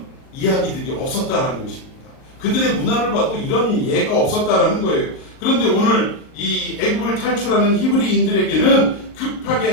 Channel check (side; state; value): right; late; 38 ms